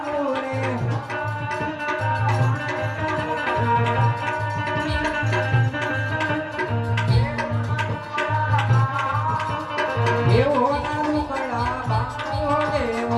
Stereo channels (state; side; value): identical; both; correlation 1.00